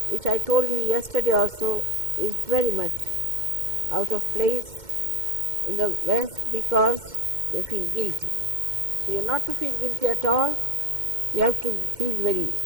which I told you yesterday also is very much out of place in the West, because they feel guilty. So you are not to feel guilty at all. You have to feel very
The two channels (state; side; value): late; left; 2.1 ms